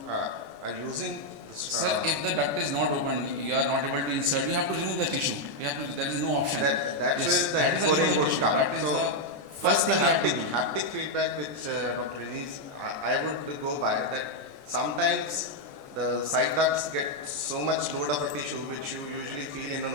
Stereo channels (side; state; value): left; late; 14 ms